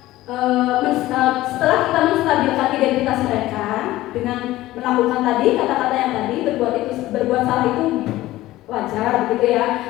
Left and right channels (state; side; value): quieter; right; 16.4 dB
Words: setelah kita menstabilkan identitas mereka dengan melakukan tadi kata-kata yang tadi, berbuat salah itu wajar, begitu ya.